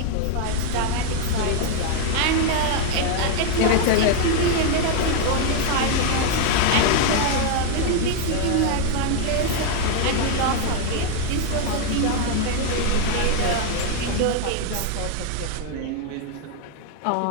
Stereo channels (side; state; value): both; different; correlation 0.01